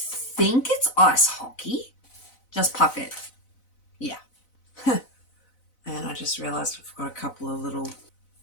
it's ice hockey. Just puck it. Yeah. And I just realised I've got a couple of little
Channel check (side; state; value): right; late; 4.0 ms